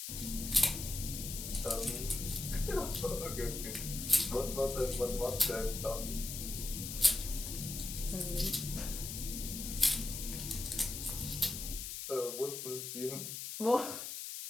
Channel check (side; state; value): left; noise; hiss, 6 dB below the sound